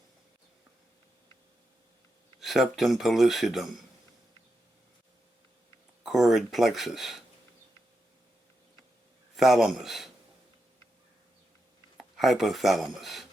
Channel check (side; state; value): both; normal; correlation 0.86